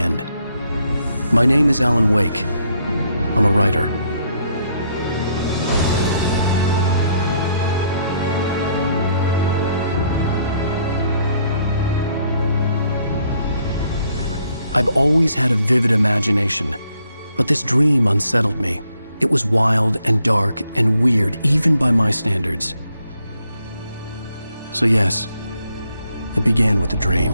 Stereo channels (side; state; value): both; inverted; correlation -0.71